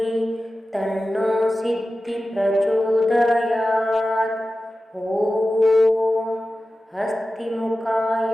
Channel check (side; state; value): both; normal; correlation 0.94